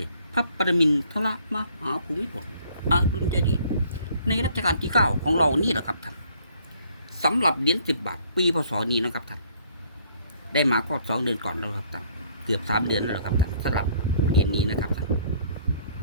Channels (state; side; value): inverted; both; correlation -0.61